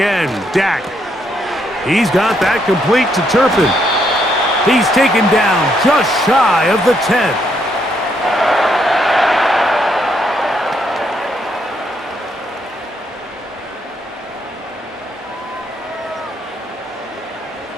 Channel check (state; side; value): normal; both; correlation 0.74